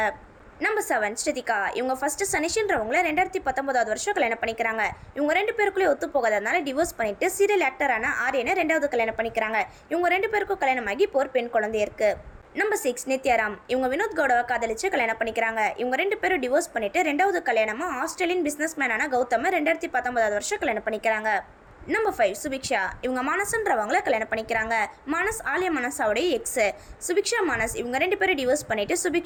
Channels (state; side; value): identical; both; correlation 1.00